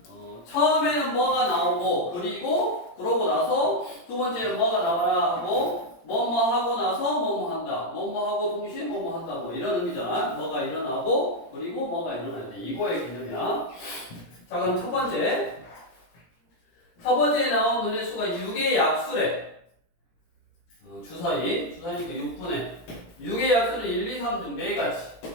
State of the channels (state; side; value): late; right; 17 ms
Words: 처음에는 뭐가 나오고 그러고 나서 두 번째는 뭐가 나와라 하고 뭐뭐 하고 나서 뭐뭐 한다. 뭐뭐 하고 동시에 뭐뭐 한다. 뭐 이런 의미잖아. 뭐가 일어나고 그리고 뭐가 일어나야 돼. 이거의 개념이야. 자 그럼 첫 번째에 나온 눈의 수가 6의 약수래. 주사위니까 6의 약수는 1, 2, 3 중 4가지